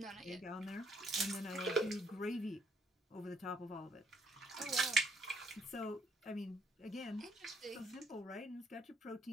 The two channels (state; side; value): normal; both; correlation 0.69